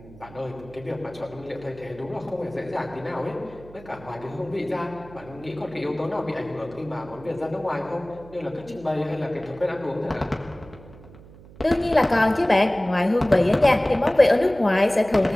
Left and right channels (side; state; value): right; noise; hum, 20 dB below the sound